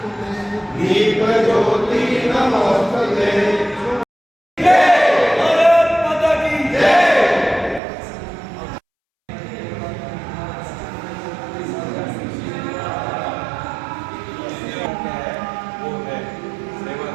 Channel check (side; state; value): left; drops out; at 7.8 s